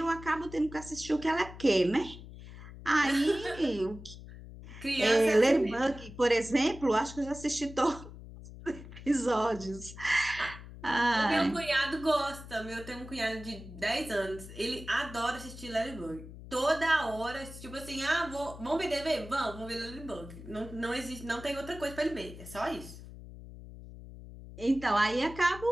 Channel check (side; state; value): left; noise; hum, 14 dB below the sound